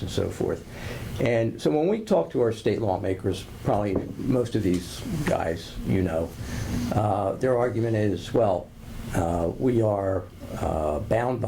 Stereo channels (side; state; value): both; identical; correlation 1.00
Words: and so forth. And so when we talk to our state lawmakers, probably most of these guys, their argument is, well, we are bound